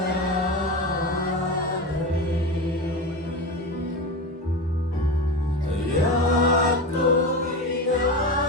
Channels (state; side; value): normal; both; correlation 0.23